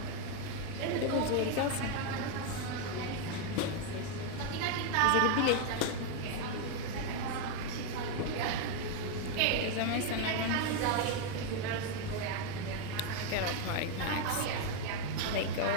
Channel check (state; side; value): different; both; correlation 0.01